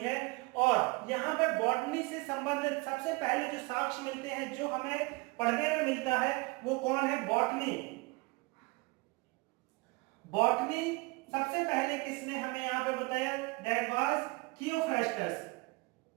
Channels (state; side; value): quieter; left; 26.0 dB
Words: है। और यहाँ पे बॉटनी से संबंधित सबसे पहले जो साक्ष्य मिलते हैं, जो हमें पढ़ने में मिलता है, वो कौन है? बॉटनी। बॉटनी सबसे पहले किसने हमें यहाँ पे बताया? That was Theophrastus.